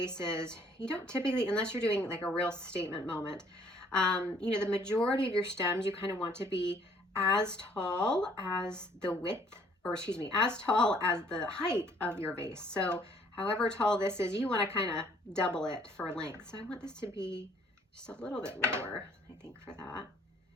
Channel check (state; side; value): normal; both; correlation 0.60